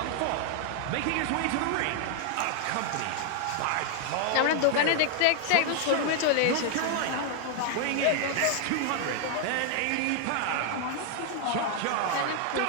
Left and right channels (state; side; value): different; both; correlation 0.00